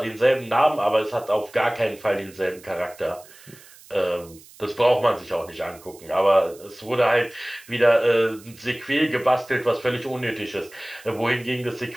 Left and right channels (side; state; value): right; noise; hiss, 23 dB below the sound